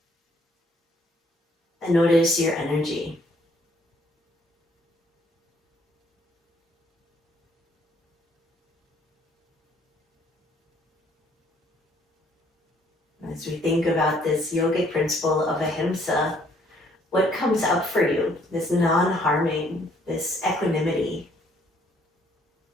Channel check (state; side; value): normal; both; correlation 0.63